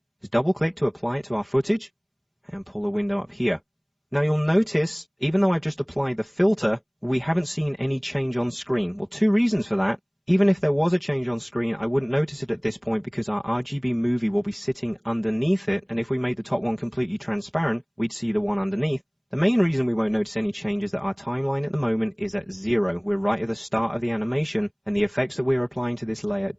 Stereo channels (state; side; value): identical; both; correlation 1.00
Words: Just double click to apply it to our footage and pull the window up here. Now you'll notice, even though I've just applied the filter, we haven't seen any change on screen. Well, 2 reasons for that. Even if there was a change on screen, I wouldn't notice it at this point because our RGB movie will be sitting underneath it, and if we made the top one completely transparent, we'd see the one underneath. The main reason we won't notice any change is that our timeline at the moment is at 0. We're right at the start of the animation, and the effects that we're applying to this layer